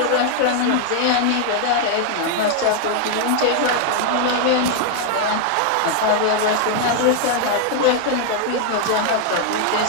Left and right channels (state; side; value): different; both; correlation 0.00